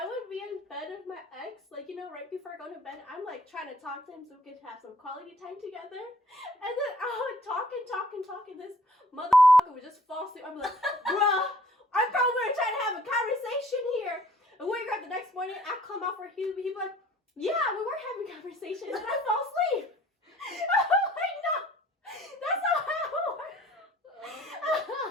would be in bed with my ex, like, you know, right before I go to bed, I'm like trying to talk to him so we could have some quality time together. And then I would talk, and this motherfucker would just fall asleep. I'm like, bruh, I thought we were trying to have a conversation here. And wake up the next morning, I come out for he'd be like, yeah, we were having a conversation, and then I fell asleep. I'm like, no, that's not how it works.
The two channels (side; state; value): both; normal; correlation 0.56